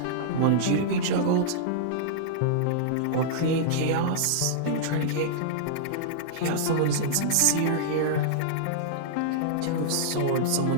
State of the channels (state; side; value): different; both; correlation -0.02